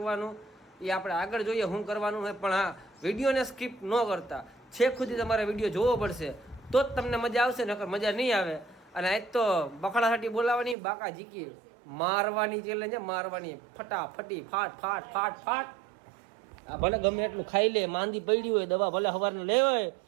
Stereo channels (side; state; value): left; drops out; at 10.8 s